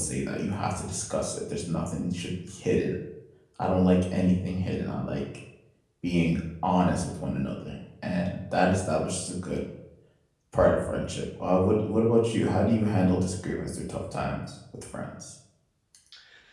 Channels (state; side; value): identical; both; correlation 1.00